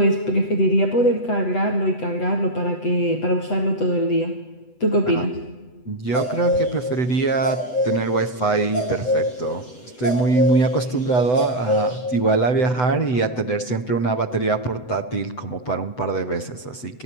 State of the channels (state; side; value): late; right; 8.0 ms